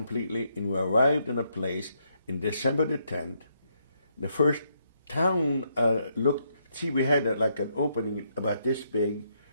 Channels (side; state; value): both; inverted; correlation -0.77